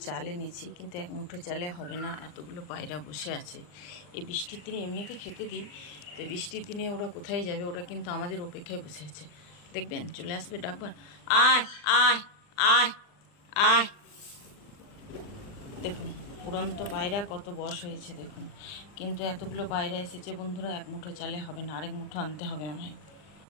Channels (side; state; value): right; late; 40 ms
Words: চাল এনেছি, কিন্তু এক মুঠো চালে হবে না, এতগুলো পায়রা বসে আছে। এই বৃষ্টির দিনে এমনিতে খেতে দিই, তো বৃষ্টির দিনে ওরা কোথায় যাবে? ওরা কিন্তু আমাদের অপেক্ষায় বসে আছে। দেখবেন চলে আসবে ডাকবার, আয় আয় আয় আয়। দেখুন উড়ন্ত পায়রা কত বয়স হয়েছে দেখুন, কিন্তু এতগুলো পায়রা এসেছে বন্ধুরা, এক মুঠো চালে হবে না, আরেক মুঠো আনতে হবে আমায়।